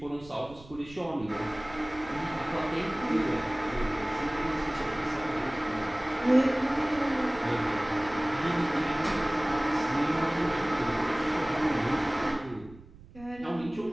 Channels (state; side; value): noise; right; rumble, 20 dB below the sound